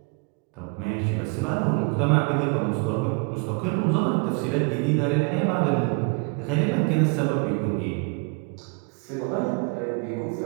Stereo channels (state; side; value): quieter; left; 33.1 dB